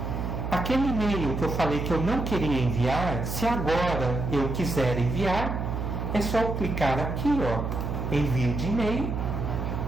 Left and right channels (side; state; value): right; noise; hum, 3 dB below the sound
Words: Aquele e-mail que eu falei que eu não queria enviar, se agora eu quiser enviar, é só eu clicar aqui, ó, envio de e-mail,